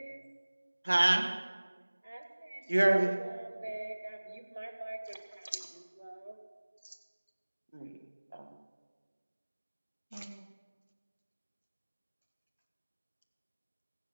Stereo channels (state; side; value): inverted; both; correlation -1.00